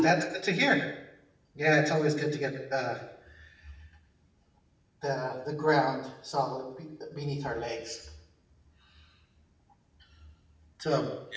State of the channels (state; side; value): identical; both; correlation 1.00